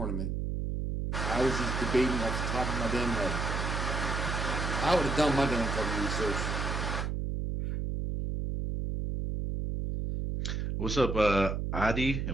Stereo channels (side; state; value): right; noise; hum, 1 dB below the sound